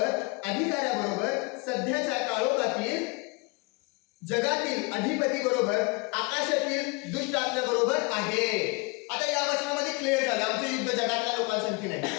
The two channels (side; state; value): right; quieter; 28.3 dB